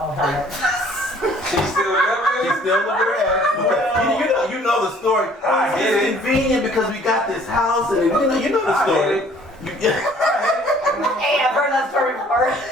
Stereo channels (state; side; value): normal; both; correlation 0.56